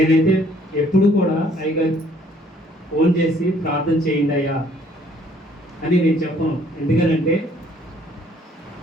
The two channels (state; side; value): normal; both; correlation 0.61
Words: ఎప్పుడు కూడా అయ్యగారు ఫోన్ చేసి ప్రార్థన చేయండి అయ్యా అని నేను చెప్పను. ఎందుకనంటే